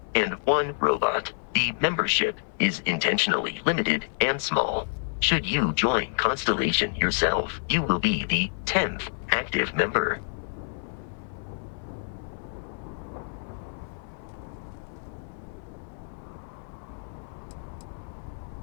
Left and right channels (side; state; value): right; silent; 59 dB below the other